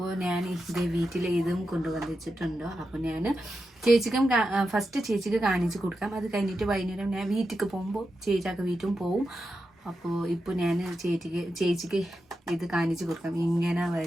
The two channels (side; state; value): both; normal; correlation 0.89